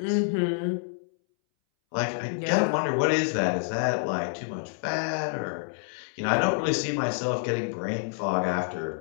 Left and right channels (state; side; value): silent; right; 60 dB below the other